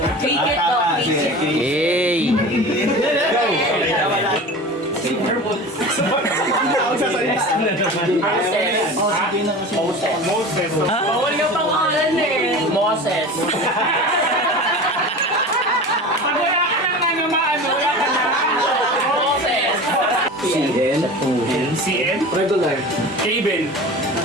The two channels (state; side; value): normal; both; correlation 0.34